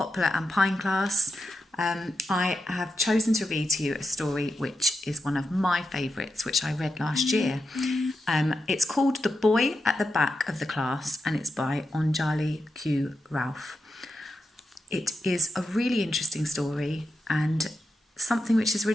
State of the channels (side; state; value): both; normal; correlation 0.87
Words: and Pine class. I have chosen to read to you a story which is one of my favourites, which I read last year. It's called The Boy at the Back of the Class, and it's by Anjali Q. Ralph. It is a really interesting story and something which is